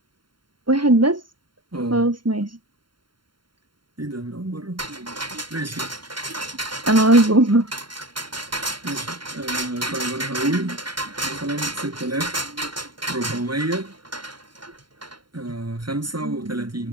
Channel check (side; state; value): left; late; 0.72 ms